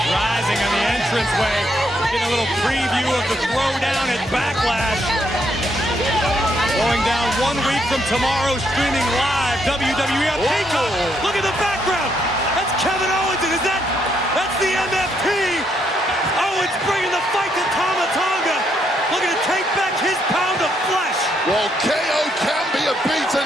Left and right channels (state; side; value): normal; both; correlation 0.75